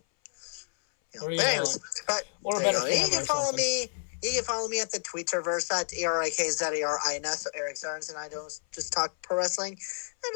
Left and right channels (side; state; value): right; silent; 56 dB below the other